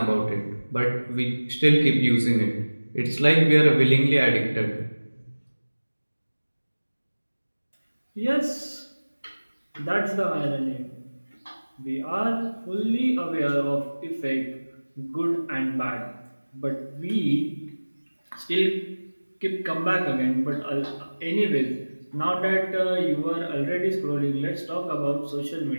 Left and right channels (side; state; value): both; inverted; correlation -1.00